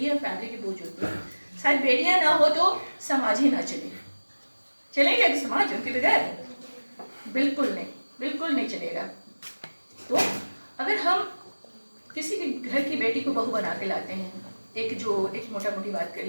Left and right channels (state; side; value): inverted; both; correlation -1.00